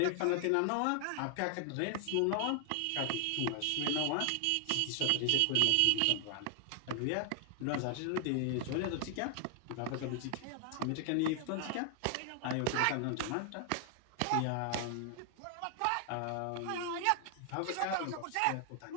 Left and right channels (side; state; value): both; different; correlation 0.00